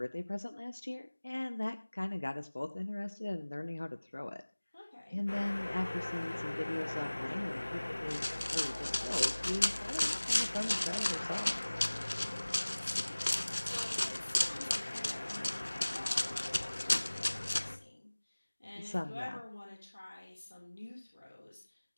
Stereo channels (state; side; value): inverted; both; correlation -1.00